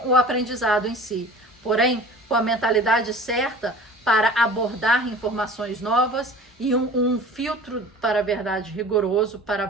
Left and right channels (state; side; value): normal; both; correlation 0.42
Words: o aprendizado em si. Porém, com a mentalidade certa para abordar informações novas e um filtro para a verdade rigoroso para